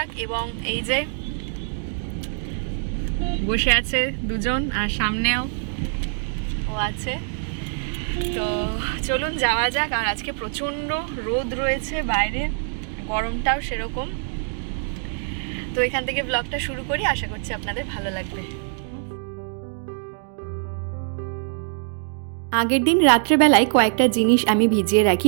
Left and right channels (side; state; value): left; silent; 63 dB below the other